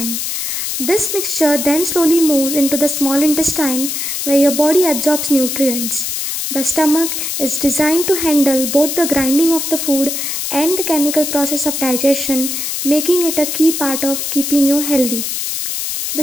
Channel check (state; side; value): noise; left; hiss, 3 dB below the sound